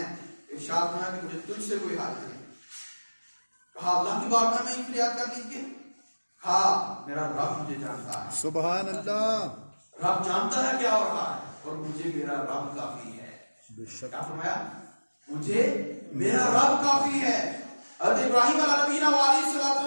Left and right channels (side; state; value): both; inverted; correlation -1.00